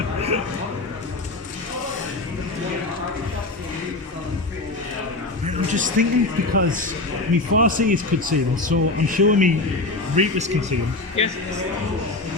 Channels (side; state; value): right; quieter; 3.1 dB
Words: I'm just thinking because me Farsi is concealed, so I'm sure me Reapers concealed. Yes.